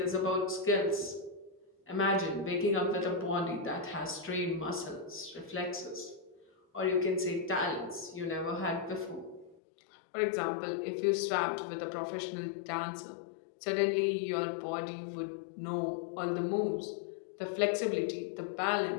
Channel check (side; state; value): right; drops out; at 9.6 s